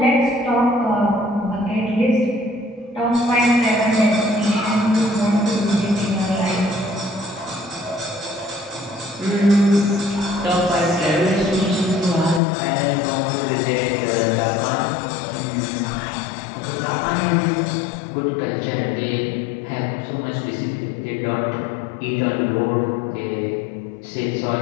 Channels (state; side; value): drops out; right; at 12.4 s